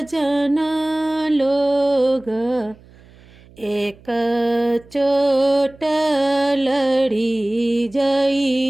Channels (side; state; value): right; noise; hum, 25 dB below the sound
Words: लोग एक चोट लड़ी